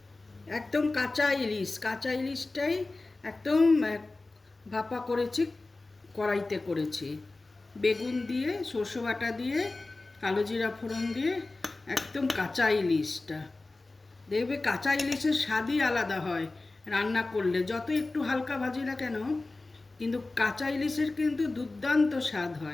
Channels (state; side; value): quieter; right; 3.2 dB